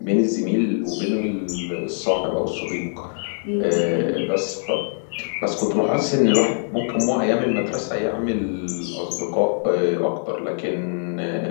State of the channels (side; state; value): right; silent; digital silence